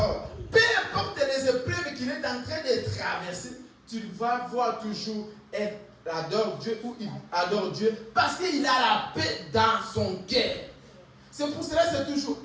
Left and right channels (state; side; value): identical; both; correlation 1.00